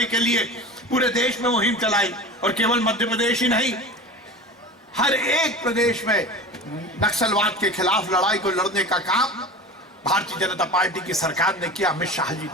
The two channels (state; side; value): normal; both; correlation 0.33